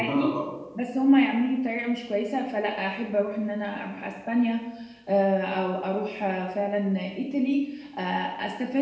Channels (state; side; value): identical; both; correlation 1.00